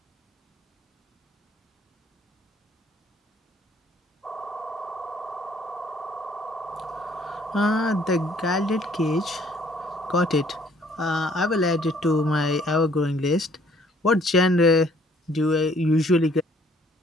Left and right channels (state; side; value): normal; both; correlation 0.61